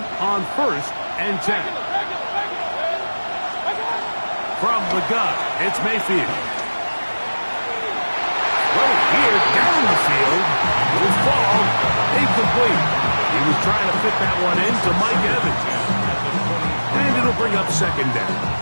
on 1st and 10. From the gun, it's Mayfield. Well, here down the field. Will fall incomplete. He was trying to fit that one into Mike Evans. And it'll bring up 2nd down.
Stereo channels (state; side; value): inverted; both; correlation -1.00